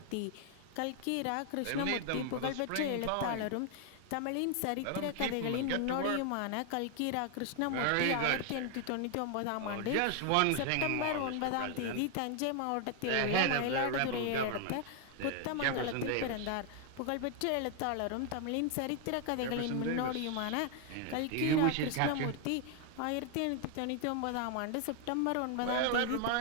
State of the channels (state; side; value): different; both; correlation 0.00